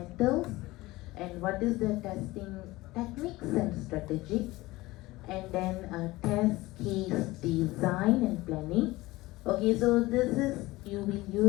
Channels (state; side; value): quieter; right; 19.6 dB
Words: and what is the testing techniques and strategy, and then test case design and planning. Okay, so this is, you will